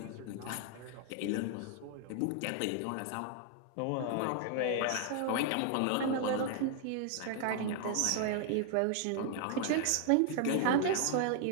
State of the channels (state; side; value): different; both; correlation 0.00